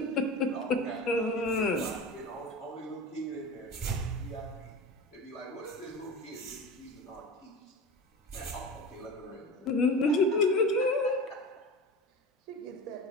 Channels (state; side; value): normal; both; correlation 0.30